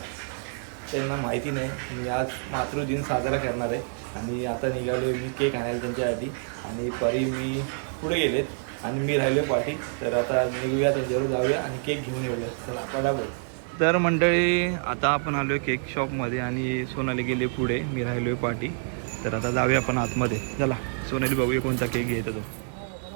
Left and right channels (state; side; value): silent; left; 58 dB below the other